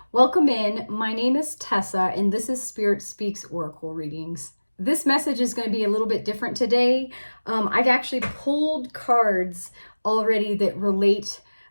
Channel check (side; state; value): both; inverted; correlation -1.00